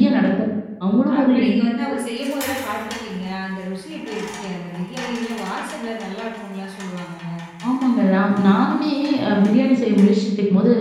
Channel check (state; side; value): identical; both; correlation 1.00